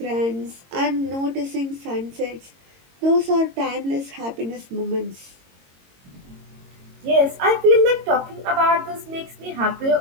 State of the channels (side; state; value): left; late; 22 ms